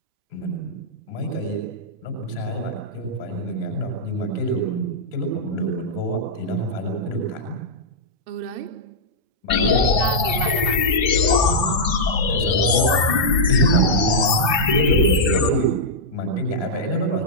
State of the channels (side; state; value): left; late; 3.0 ms